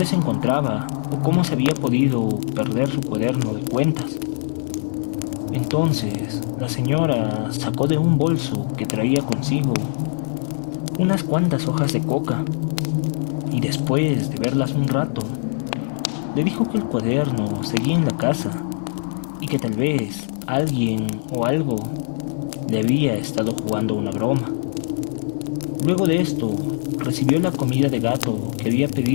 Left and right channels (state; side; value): silent; right; digital silence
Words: se encontraba o cómo se había podido perder su cuaderno de cuentas. Entonces, la señora sacó de un bolso que traía consigo unas cuantas hojas de coca, y después de verlas un rato, le dijo que el cuaderno seguía en la casa y que tal vez alguien o algo le había estado jugando una broma. Luego de esto, recibió la comida de gato que había